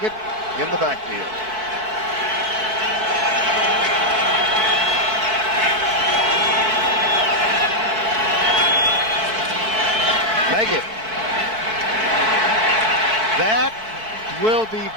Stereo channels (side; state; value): left; late; 4.6 ms